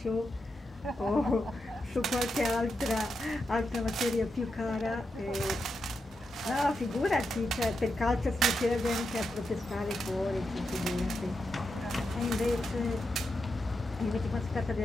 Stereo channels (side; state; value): both; normal; correlation 0.86